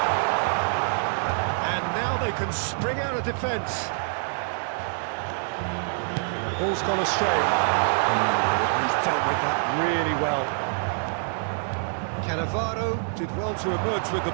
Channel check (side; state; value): left; silent; 61 dB below the other